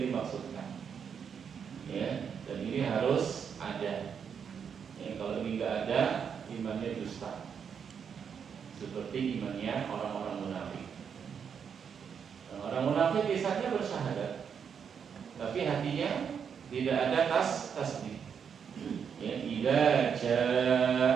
dimaksudkan, ya. Dan ini harus ada, ya. Kalau ini nggak ada, imannya dusta, seperti imannya orang-orang munafik. Orang munafik biasanya bersyahadat, tapi hatinya tidak ada tasdik. Ya, idza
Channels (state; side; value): quieter; left; 7.1 dB